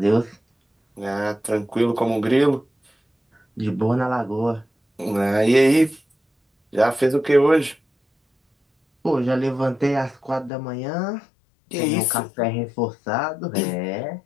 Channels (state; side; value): drops out; right; at 10.5 s